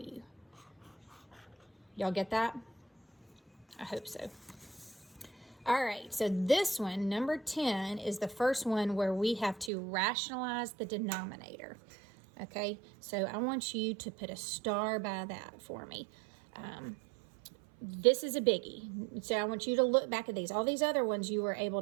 Y'all get that? I hope so. All right, so this one, number 10, is the first one where we have to rationalize the denominator. Okay, so I want you to put a star by that for me. This is a biggie. So I want you to look back at these. All these other ones you were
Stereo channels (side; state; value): left; drops out; at 9.7 s